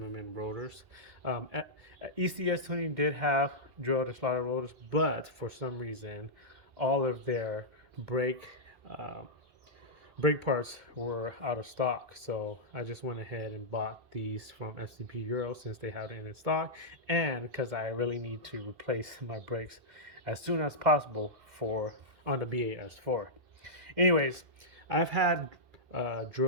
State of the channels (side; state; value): left; late; 2.3 ms